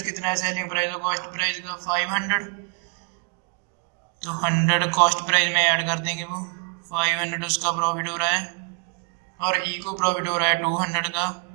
कितना है सेलिंग प्राइस और कॉस्ट प्राइस का 500, तो 100 कॉस्ट प्राइस में ऐड कर देंगे, वो 500 उसका प्रॉफिट हो रहा है और ई को प्रॉफिट हो रहा है 200 का,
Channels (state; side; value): quieter; left; 35.2 dB